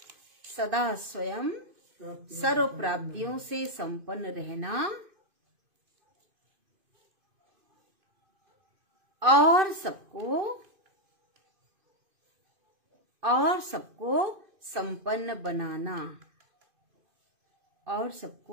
सदा स्वयं सर्व प्राप्तियों से संपन्न रहना और सबको संपन्न बनाना, और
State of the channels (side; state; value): left; late; 2.6 ms